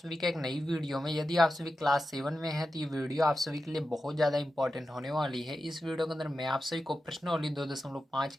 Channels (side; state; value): both; normal; correlation 0.91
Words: का एक नई वीडियो में। यदि आप सभी क्लास 7 में हैं तो ये वीडियो आप सभी के लिए बहुत ज़्यादा इंपॉर्टेंट होने वाली है। इस वीडियो के अंदर मैं आप सभी को प्रश्नावली 2.5